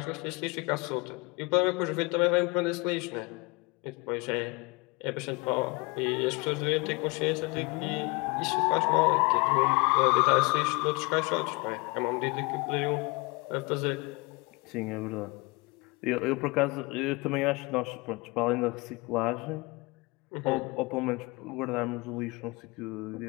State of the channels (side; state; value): right; quieter; 26.8 dB